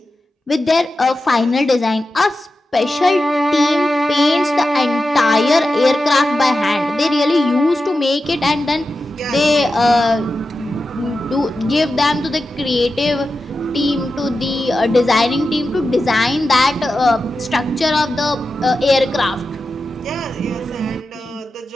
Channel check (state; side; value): normal; both; correlation 0.91